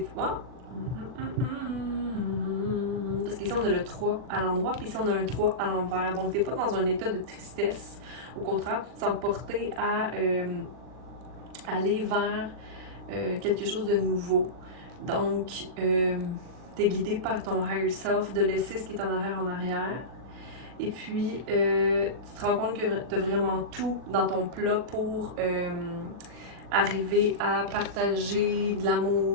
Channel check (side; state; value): left; late; 40 ms